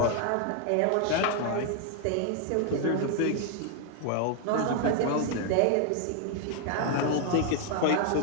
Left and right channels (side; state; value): both; different; correlation 0.00